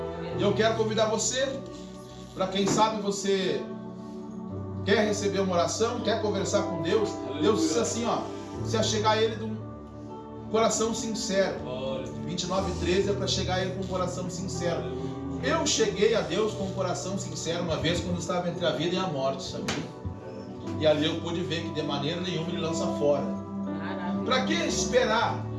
E eu quero convidar você, para quem sabe você quer receber uma oração, quer conversar com Deus. Deus disse assim, ó, se chegar a Ele de um coração sincero. 29:13 é para chegar a Ele com um coração sincero. Eu cheguei a Deus com um coração sincero uma vez quando estava entre a vida e a morte, sabia? E ali eu pude ver que de maneira nenhuma Ele lança fora. Para que esperar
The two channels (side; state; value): both; identical; correlation 1.00